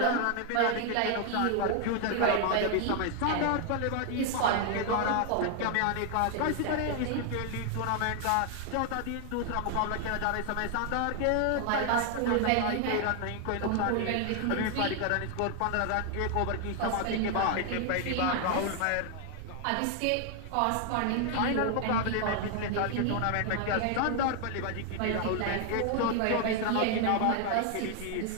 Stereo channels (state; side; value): different; both; correlation 0.00